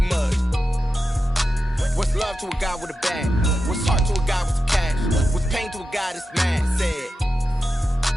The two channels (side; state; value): both; normal; correlation 0.90